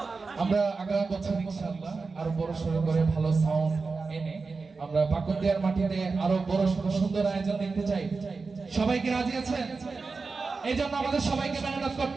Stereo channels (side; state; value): left; quieter; 4.3 dB